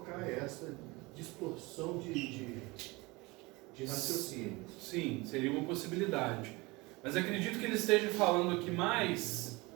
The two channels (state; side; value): quieter; left; 23.8 dB